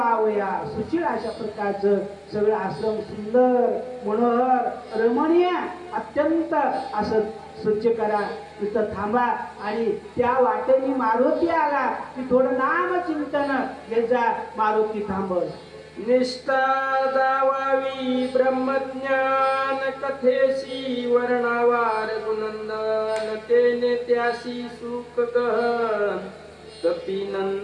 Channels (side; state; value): both; identical; correlation 1.00